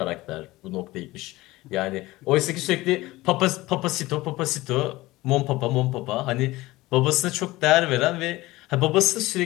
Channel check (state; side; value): quieter; right; 19.0 dB